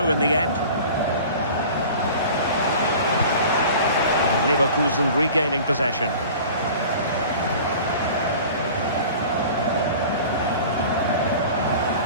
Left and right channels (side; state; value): both; inverted; correlation -0.41